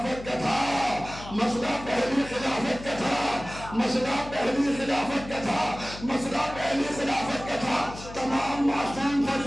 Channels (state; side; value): noise; left; hum, 14 dB below the sound